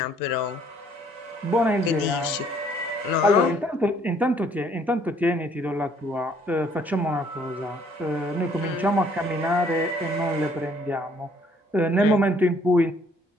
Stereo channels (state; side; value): normal; both; correlation 0.62